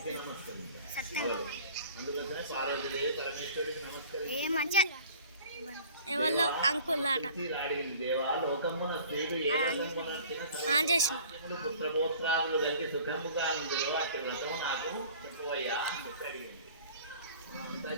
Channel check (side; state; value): both; inverted; correlation -0.47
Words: ఏ మంచిగా ఎవరిలో అంకుల్ ఆట చేసిన